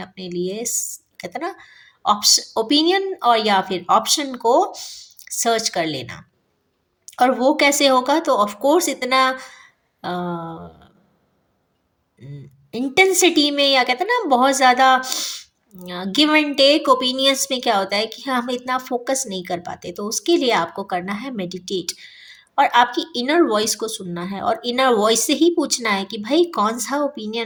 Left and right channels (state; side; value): identical; both; correlation 1.00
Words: लिए, कहते हैं ना, ऑप्शन ओपिनियन और या फिर ऑप्शन को सर्च कर लेना। और वो कैसे होगा, तो ऑफ कोर्स इतना इंटेंसिटी में, या कहते हैं ना बहुत ज़्यादा गिव एंड टेक ओपिनियंस में क्या होता है कि हम इतना फोकस नहीं कर पाते। तो उसके लिए आपको करना है मेडिटेट। और आपकी इनर वॉइस को सुनना है और इनर वॉइस से ही पूछना है कि भाई कौन सा